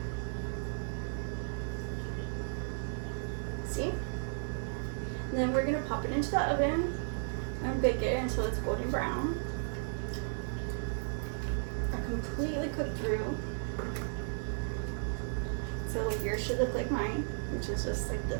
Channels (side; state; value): left; silent; 55 dB below the other